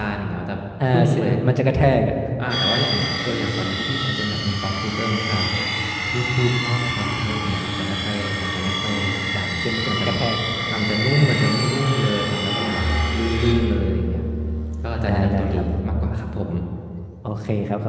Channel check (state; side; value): identical; both; correlation 1.00